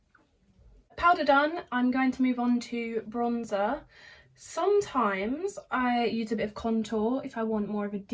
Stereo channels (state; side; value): identical; both; correlation 1.00